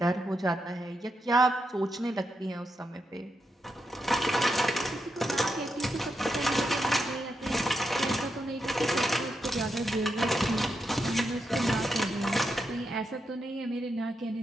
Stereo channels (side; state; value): both; normal; correlation 0.84